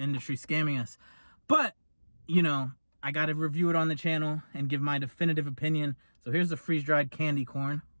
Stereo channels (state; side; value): inverted; both; correlation -1.00